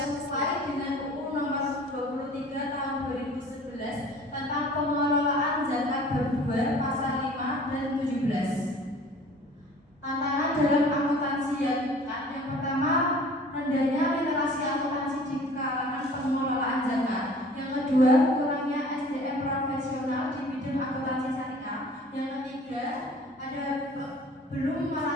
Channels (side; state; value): both; normal; correlation 0.48